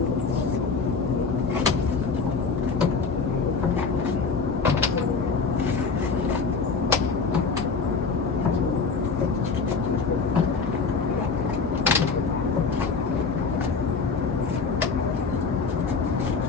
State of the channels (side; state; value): right; quieter; 4.8 dB